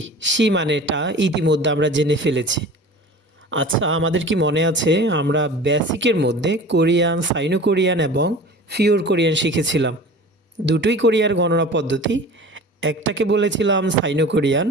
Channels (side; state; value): both; normal; correlation 0.39